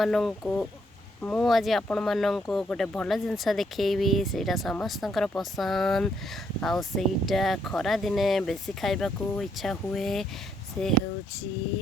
ମୁଁ ଆଜି ଆପଣମାନଙ୍କୁ ଗୋଟେ ଭଲ ଜିନିଷ ଦେଖେଇବି। ସେଇଟା ସମସ୍ତଙ୍କର ପସନ୍ଦ ଆଉ ସେଇଟା ଖରା ଦିନେ ବେଶୀ ଖାଇବାକୁ ଇଚ୍ଛା ହୁଏ। ସେ ହେଉଛି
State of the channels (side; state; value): both; normal; correlation 0.73